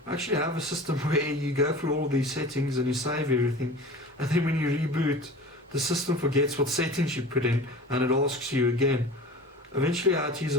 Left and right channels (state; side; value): normal; both; correlation 0.37